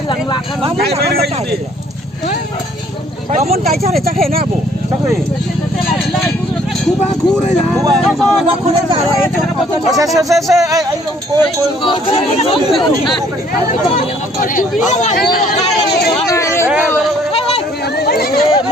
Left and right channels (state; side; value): normal; both; correlation 0.61